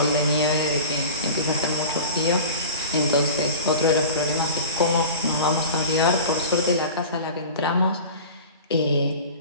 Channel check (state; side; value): inverted; both; correlation -0.36